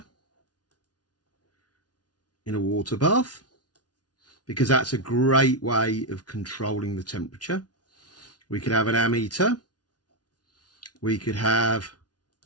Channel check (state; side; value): late; right; 0.69 ms